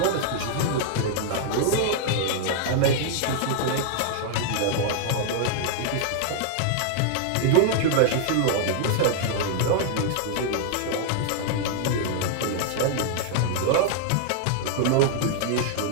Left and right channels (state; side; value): different; both; correlation -0.01